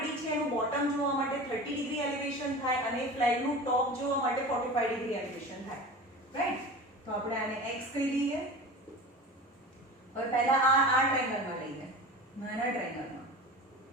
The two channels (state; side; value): normal; both; correlation 0.34